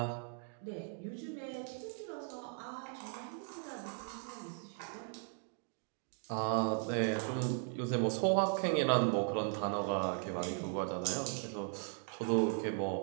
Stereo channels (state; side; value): silent; left; 53 dB below the other